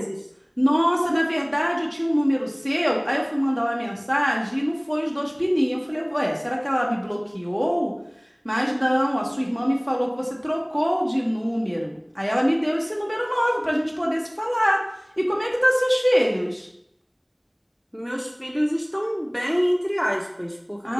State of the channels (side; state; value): both; identical; correlation 1.00